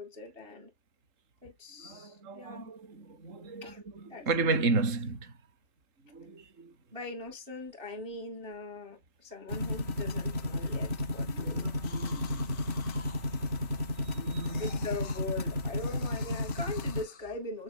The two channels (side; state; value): left; late; 3.4 ms